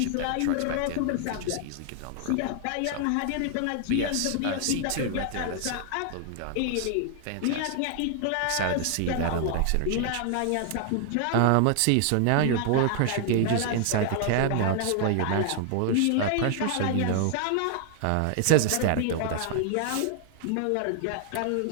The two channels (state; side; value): different; both; correlation 0.00